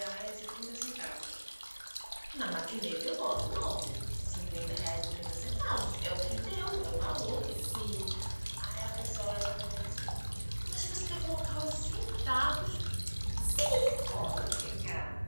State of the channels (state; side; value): inverted; both; correlation -1.00